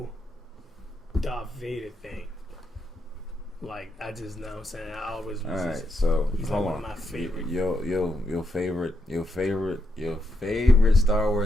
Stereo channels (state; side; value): normal; both; correlation 0.81